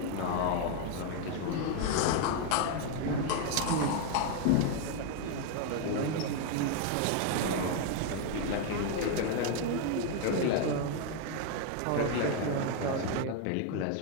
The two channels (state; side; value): different; both; correlation 0.01